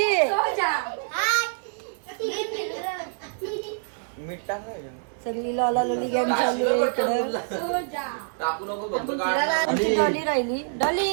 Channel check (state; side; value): silent; left; 61 dB below the other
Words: सगळी लॉला लोली गॅंग चालली आहे इकडं. आमची डॉली राहिली. डॉली